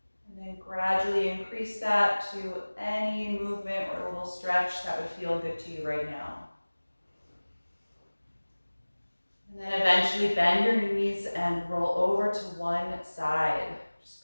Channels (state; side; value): inverted; both; correlation -1.00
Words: and then gradually increase that to any movement or a little stretch that would feel good to you right now. And then eventually bend your knees and roll over to one side,